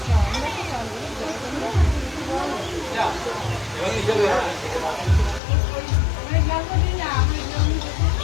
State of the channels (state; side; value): drops out; right; at 5.4 s